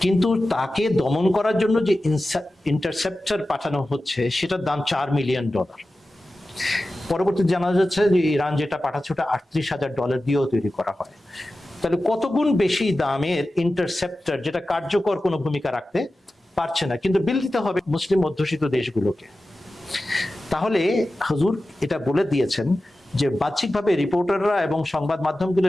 কিন্তু তাকে দমন করার জন্য যে ইন্টারসেপ্টর পাঠানো হচ্ছে সেটার দাম $4 মিলিয়ন। পরবর্তী জানা যাচ্ছে যে ইরান যেটা পাঠাচ্ছে ওটা $38,000 দিয়েও তৈরি করা হয়। তাহলে কত গুণ বেশি দামের ইন্টারসেপ্টর যেটা কার্যকর কোনো ভূমিকা রাখতে পারছে না, কিন্তু বিল দিতে হবে মুসলিম অধ্যুষিত দেশগুলোকে। তাহলে হুজুর এটা বলে দিয়েছেন যে বাহ্যিকভাবে রিপোর্টাররা এবং সংবাদ মাধ্যমগুলো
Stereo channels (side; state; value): both; normal; correlation 0.94